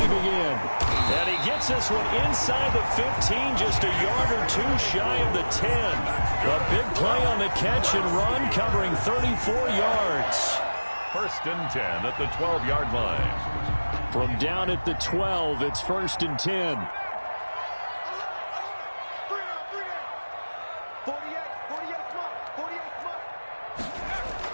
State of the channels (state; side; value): inverted; both; correlation -1.00